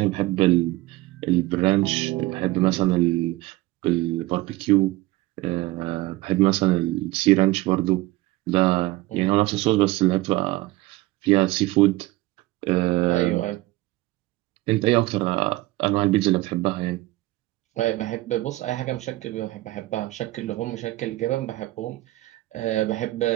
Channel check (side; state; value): left; quieter; 18.6 dB